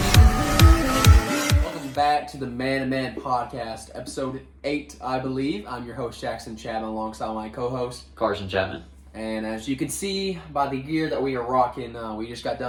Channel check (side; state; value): both; identical; correlation 1.00